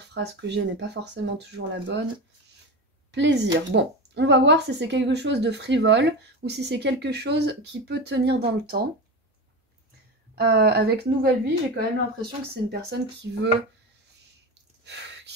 que j'ai n'est pas forcément toujours la bonne. Plaisir. Bon, on va voir si c'est quelque chose de frivole ou si c'est quelque chose qui peut tenir dans le temps. Avec nouvelle vie, j'ai quand même l'impression que c'est une personne qui veut...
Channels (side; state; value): both; normal; correlation 0.23